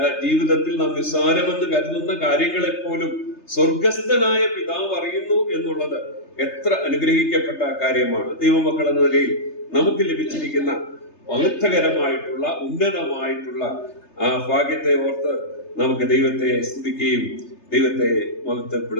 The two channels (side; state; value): right; late; 3.3 ms